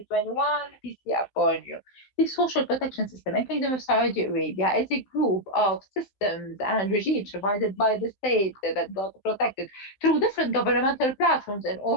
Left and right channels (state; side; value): late; right; 15 ms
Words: peace be upon you. The social protection system in Kingdom of Saudi Arabia is a group of systems and regimes provided by the state that got protected through different governmental platforms in